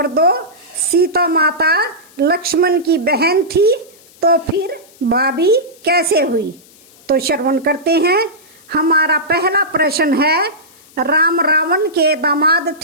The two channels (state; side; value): noise; left; hiss, 26 dB below the sound